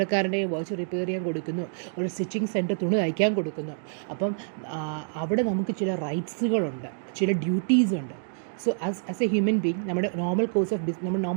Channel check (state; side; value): silent; left; digital silence